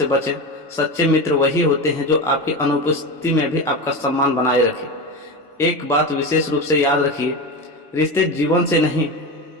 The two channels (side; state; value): both; normal; correlation 0.22